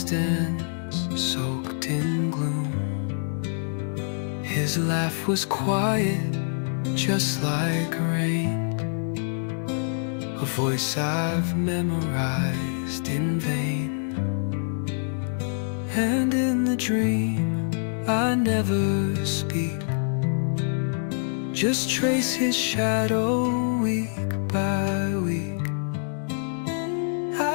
soaked in gloom. His laugh was quiet, just like rain, a voice I've memorized in vain. And in the dream I never speak, just trace his shadow week by week.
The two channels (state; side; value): silent; right; digital silence